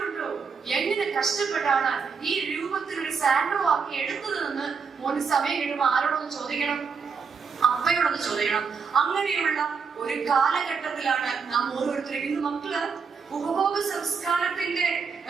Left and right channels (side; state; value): left; quieter; 5.6 dB